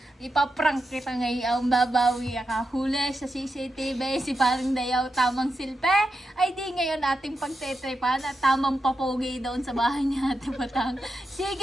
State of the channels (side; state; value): both; normal; correlation 0.87